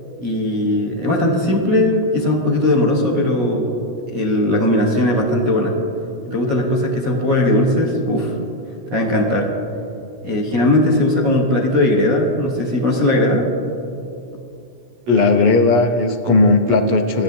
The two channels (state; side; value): late; left; 17 ms